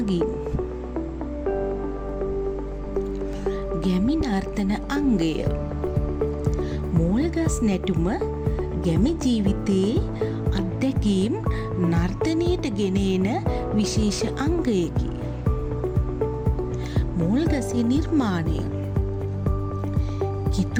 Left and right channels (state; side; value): identical; both; correlation 1.00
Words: ගැමි නර්තන අංගය. මෝල්ගස් නැටුම ගැමි ජීවිතයේ අත්දැකීම් නර්තනයට ගෙන එන විශේෂ අංගයකි. මෝල්ගසේ නිර්මාණය.